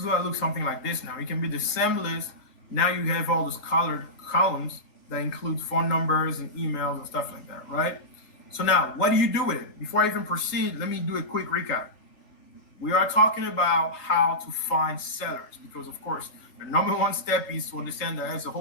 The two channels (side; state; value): right; late; 3.8 ms